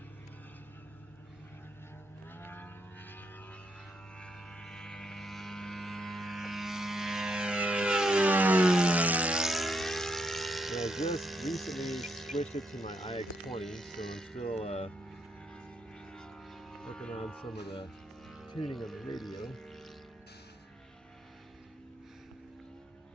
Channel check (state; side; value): normal; both; correlation 0.77